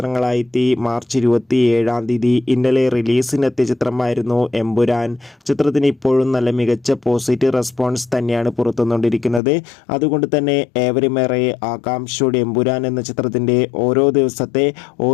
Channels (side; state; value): right; drops out; at 9.4 s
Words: മാർച്ച് 27 തീയതി ഇന്നലെ റിലീസിനെത്തിയ ചിത്രമായിരുന്നു എമ്പുരാൻ. ചിത്രത്തിന് ഇപ്പോഴും നല്ല മികച്ച പോസിറ്റീവ് റെസ്പോൺസ് തന്നെയാണ് പുറത്തുവന്നുകൊണ്ടിരിക്കുന്നത്. അതുകൊണ്ട് തന്നെ ഏവരുമേറെ ആകാംക്ഷയോടെ എമ്പുരാൻ എന്ന ചിത്രത്തിൻ്റെ ഓരോ ദിവസത്തെ